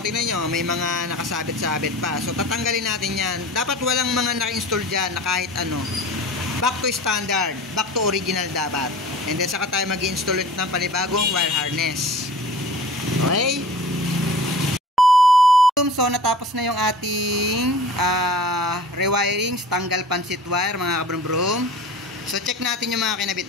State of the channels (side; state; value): both; normal; correlation 0.40